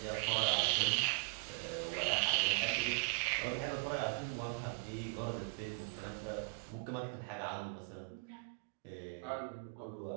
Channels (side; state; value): left; quieter; 32.9 dB